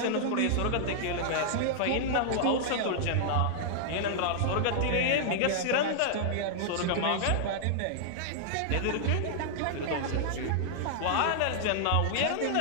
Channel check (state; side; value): different; both; correlation -0.01